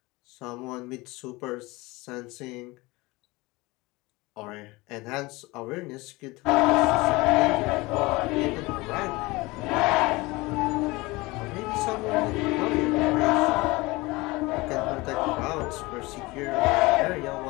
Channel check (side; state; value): right; quieter; 22.4 dB